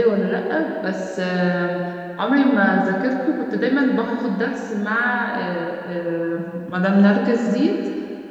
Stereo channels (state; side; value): identical; both; correlation 1.00